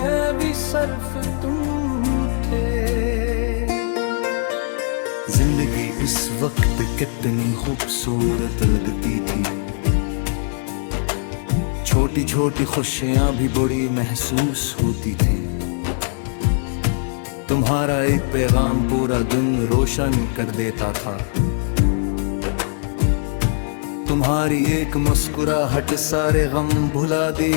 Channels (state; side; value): silent; right; digital silence